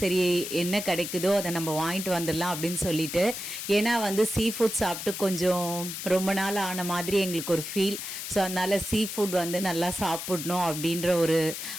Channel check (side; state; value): left; noise; hiss, 7 dB below the sound